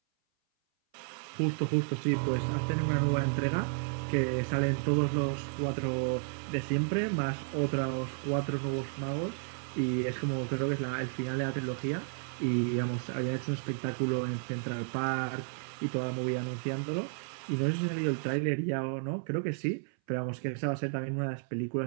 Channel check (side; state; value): left; silent; 56 dB below the other